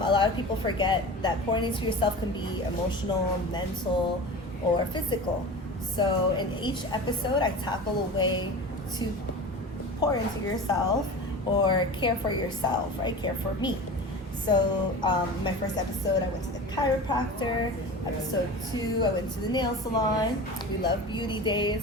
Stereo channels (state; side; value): normal; both; correlation 0.33